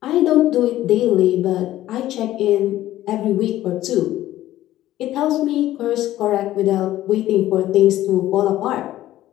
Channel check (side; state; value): right; quieter; 14.3 dB